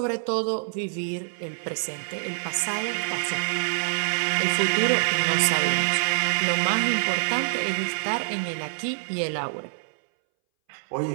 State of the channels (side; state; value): left; silent; 61 dB below the other